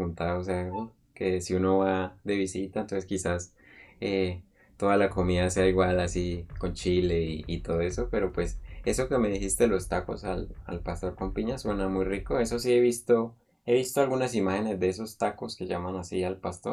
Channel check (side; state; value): both; identical; correlation 1.00